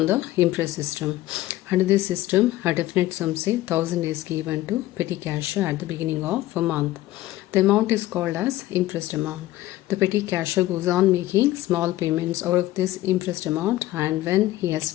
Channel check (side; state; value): right; quieter; 15.8 dB